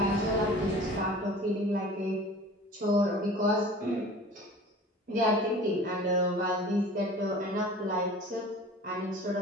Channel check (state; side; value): normal; both; correlation 0.42